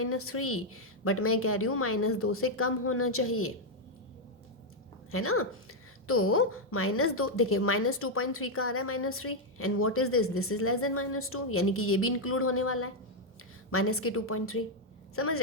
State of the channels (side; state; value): both; normal; correlation 0.01